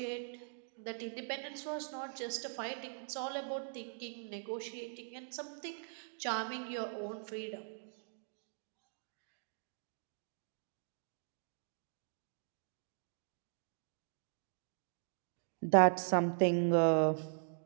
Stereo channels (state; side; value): silent; left; digital silence